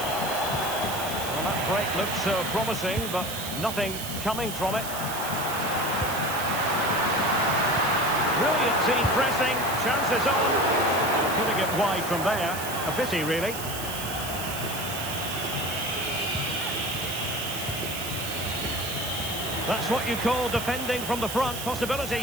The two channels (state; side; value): noise; right; hiss, 8 dB below the sound